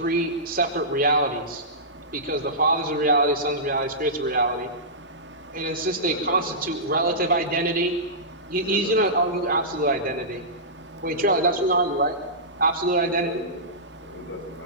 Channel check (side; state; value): both; normal; correlation -0.17